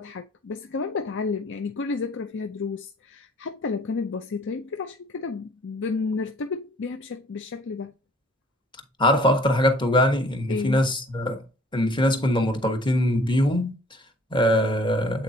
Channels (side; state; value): both; normal; correlation 0.55